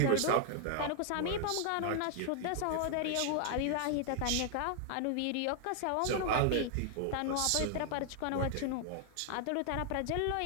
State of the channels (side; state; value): both; different; correlation 0.00